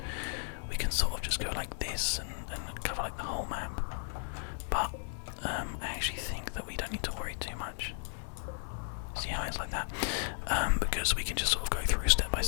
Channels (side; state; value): right; silent; 55 dB below the other